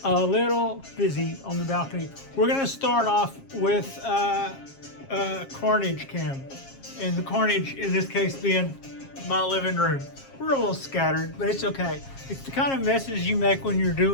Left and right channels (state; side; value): late; right; 7.4 ms